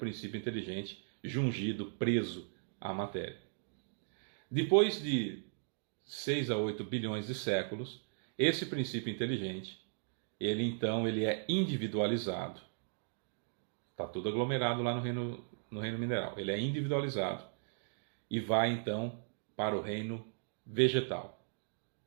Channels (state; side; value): silent; left; digital silence